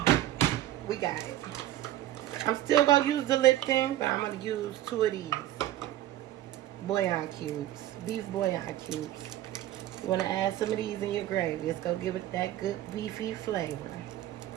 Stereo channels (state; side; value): quieter; left; 13.9 dB